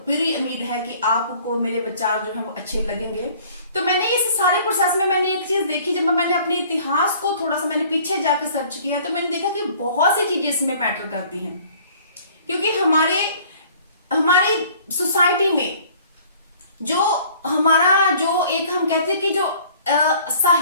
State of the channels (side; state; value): both; inverted; correlation -0.53